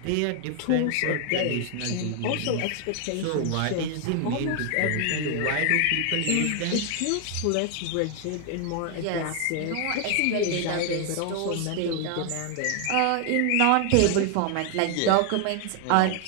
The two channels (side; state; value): both; different; correlation 0.00